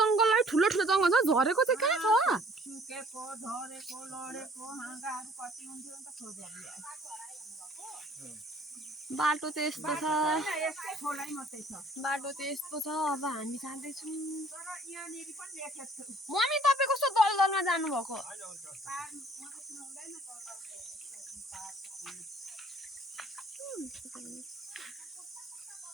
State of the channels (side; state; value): both; normal; correlation 0.56